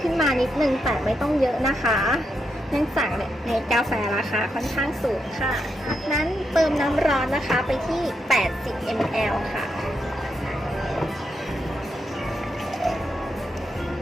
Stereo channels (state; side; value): normal; both; correlation 0.82